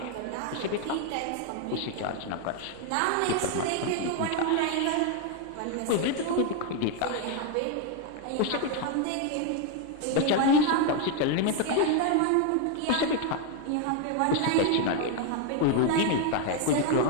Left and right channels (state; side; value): different; both; correlation 0.01